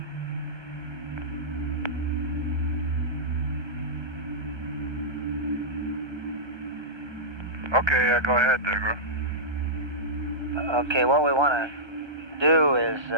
Okay, go ahead, Degra. Okay, what we want to do is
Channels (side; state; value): left; late; 1.2 ms